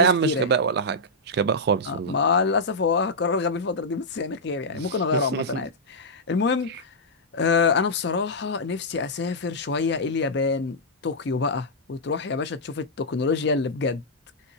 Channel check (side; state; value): both; normal; correlation -0.09